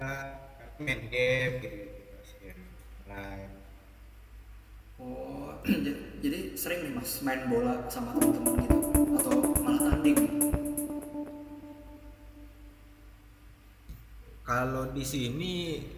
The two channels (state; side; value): identical; both; correlation 1.00